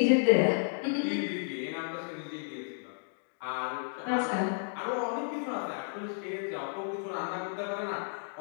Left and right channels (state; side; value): silent; right; digital silence